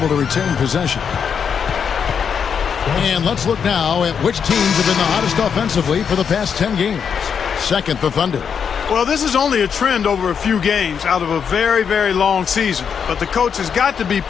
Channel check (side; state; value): right; quieter; 7.0 dB